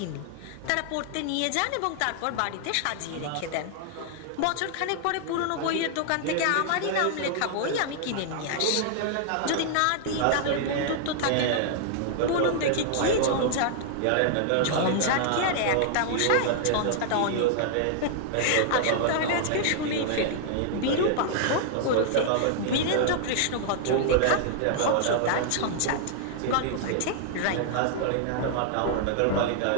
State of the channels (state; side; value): different; both; correlation -0.01